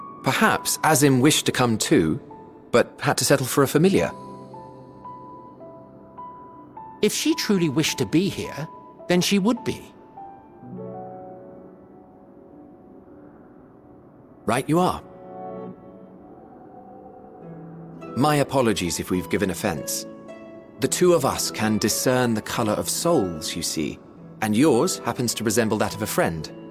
Perhaps Azim wished to come too, but had to settle for a familiar. If she truly wished to be here, then she would be. Right you are. My apologies if we've given offense. The two of us can discern the color of souls, you see, and yours happens to resemble that of a friend.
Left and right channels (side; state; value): both; identical; correlation 1.00